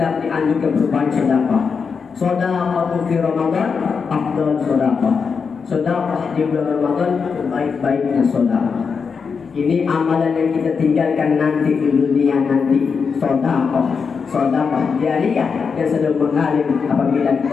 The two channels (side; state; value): right; quieter; 5.7 dB